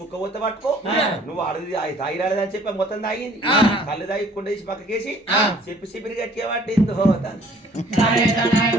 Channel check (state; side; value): normal; both; correlation 0.56